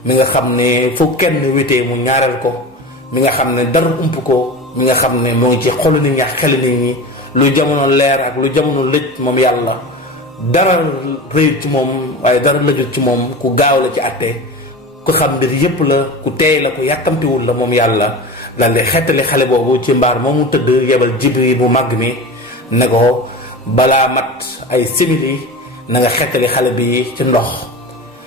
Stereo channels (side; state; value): both; normal; correlation 0.30